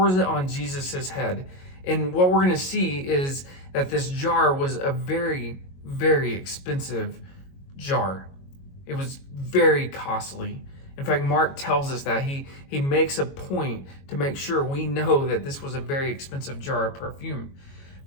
it on Jesus' head. And what we're going to see is that this jar was a very, very expensive jar. It was very costly. In fact, Mark tells us that he makes a point to make sure we know that this was a very expensive jar of perfume.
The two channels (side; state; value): right; late; 22 ms